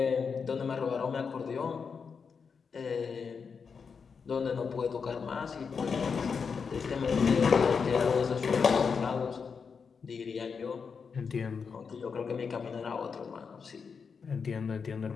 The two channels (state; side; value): quieter; right; 5.8 dB